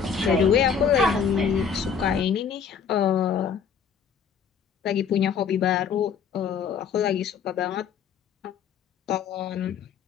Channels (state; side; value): quieter; right; 6.8 dB